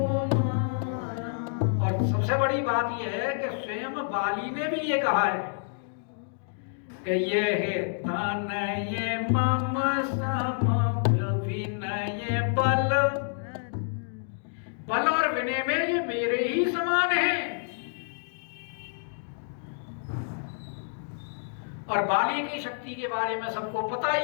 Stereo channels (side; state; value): right; silent; digital silence